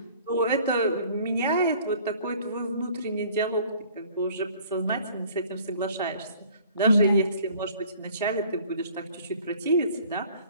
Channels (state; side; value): inverted; both; correlation -0.53